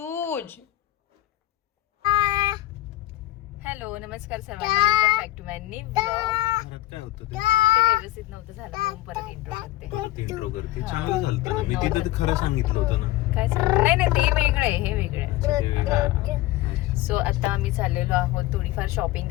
हॅलो नमस्कार सर्वांना. Welcome back to my new vlog. घरात काय होतं ते व्यवस्थित नव्हतं झालं म्हणून परत इंट्रो करते. इंट्रो करते. चांगलं झालं ना. मी तिथं खरं सांगितलं होतं ना. काय सांग? नाही ते वेगळं आहे. हे वेगळं आहे. सो आता आम्ही चाललेलो आहोत. थोडीफार शॉपिंग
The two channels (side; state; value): right; quieter; 15.9 dB